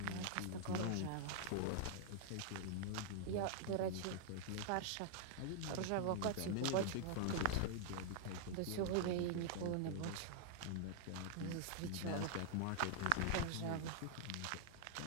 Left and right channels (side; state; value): both; different; correlation -0.01